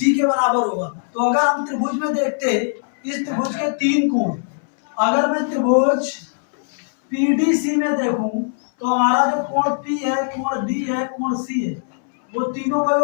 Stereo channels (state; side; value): silent; right; 66 dB below the other